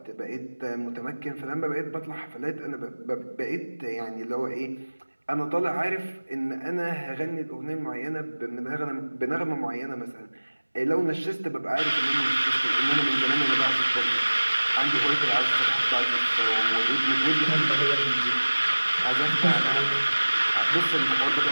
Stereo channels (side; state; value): both; inverted; correlation -1.00